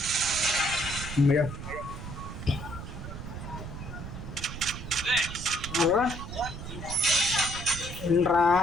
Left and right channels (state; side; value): noise; right; rumble, 9 dB below the sound